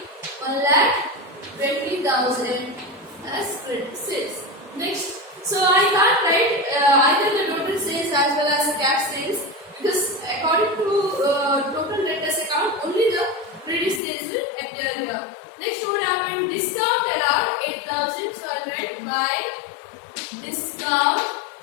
as credit sales. Next, so I can't write either the total sales as well as the cash sales, because according to total debtors account, only the credit sales will appear here. Next, what happened? Discount allowed 8,000. So I'll write by discount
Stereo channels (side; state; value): right; drops out; at 14.0 s